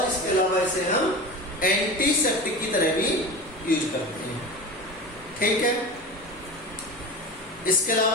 इसके अलावा इसे हम एंटीसेप्टिक की तरह भी यूज करते हैं. ठीक है, इसके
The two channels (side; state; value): both; normal; correlation 0.29